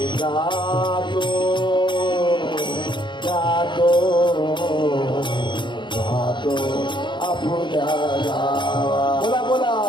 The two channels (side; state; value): right; late; 0.23 ms